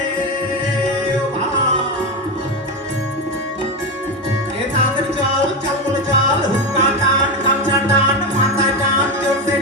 এ তাড়াতাড়ি চল চল বলে চল হুক্কা টান গামছা টান মাথা টান জোরসে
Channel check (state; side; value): normal; both; correlation 0.15